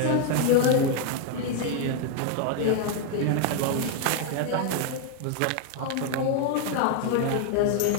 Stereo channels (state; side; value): different; both; correlation 0.00